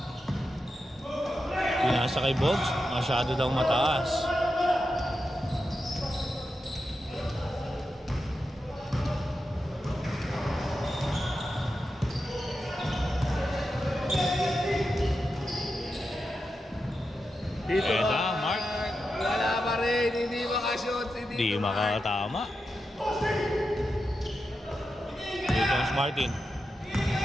Pinasa kay Bogs. Masyado daw mataas. Dito Eda, Mark. Wala pa rin. Hindi makashoot si Dito Di makatama. Dito ang Martin.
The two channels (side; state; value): both; normal; correlation 0.89